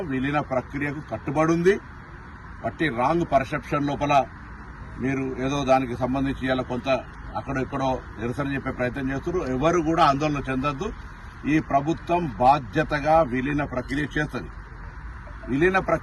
విలీన ప్రక్రియకు కట్టుబడి ఉంది. బట్టి రాంగ్ పర్సెప్షన్ లోపల మీరు ఏదో దానికి సంబంధించి ఇలా కొంత అక్కడో ఇక్కడో నిరసన చెప్పే ప్రయత్నం చేస్తున్నారు. ఎవరు కూడా ఆందోళన చెందొద్దు. ఈ ప్రభుత్వం బాధ్యతగా విలీన ప్రక్రియ చేస్తుంది. విలీన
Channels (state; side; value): identical; both; correlation 1.00